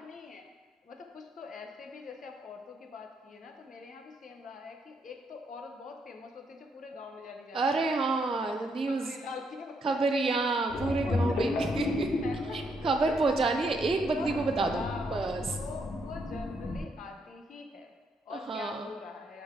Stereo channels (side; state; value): both; normal; correlation 0.75